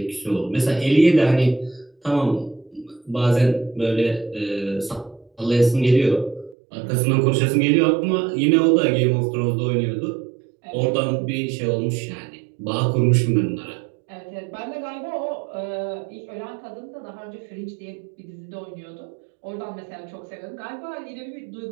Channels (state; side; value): drops out; left; at 6.6 s